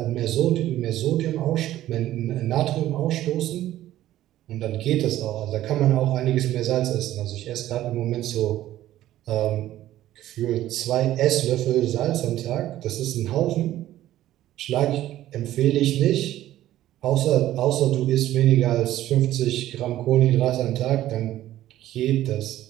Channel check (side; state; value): left; quieter; 13.8 dB